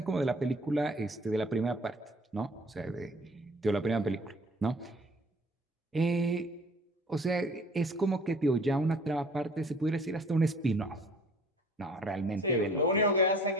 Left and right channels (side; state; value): both; normal; correlation 0.52